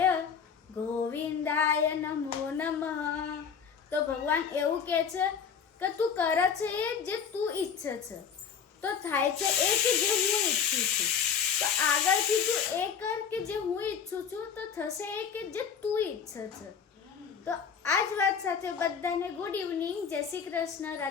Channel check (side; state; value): right; quieter; 6.9 dB